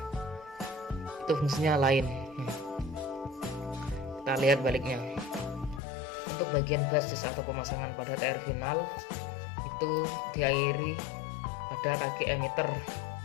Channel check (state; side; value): drops out; right; at 5.8 s